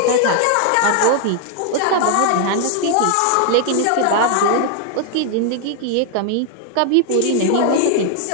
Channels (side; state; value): both; different; correlation 0.00